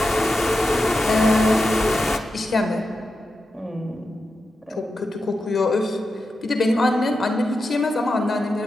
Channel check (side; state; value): both; normal; correlation 0.90